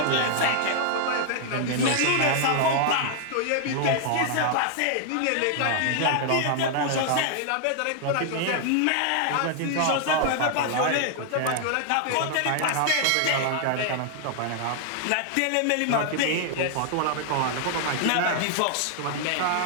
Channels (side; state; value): both; different; correlation 0.00